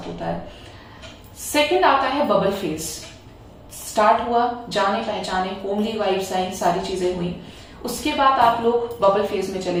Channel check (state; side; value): identical; both; correlation 1.00